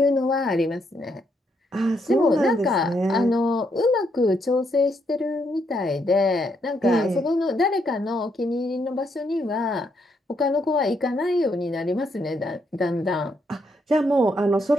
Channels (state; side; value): normal; both; correlation 0.76